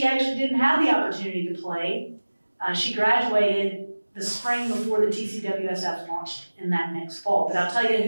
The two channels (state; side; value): inverted; both; correlation -1.00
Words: actually didn't have the opportunity to play. She graduated the spring before the TCWSF launched in that next fall. But I'll tell you